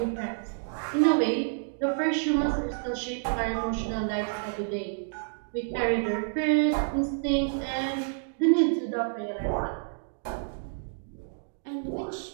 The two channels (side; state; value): left; silent; digital silence